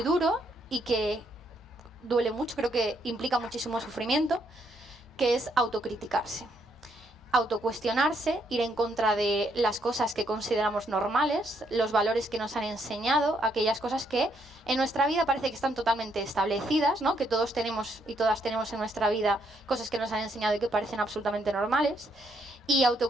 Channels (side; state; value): both; normal; correlation 0.73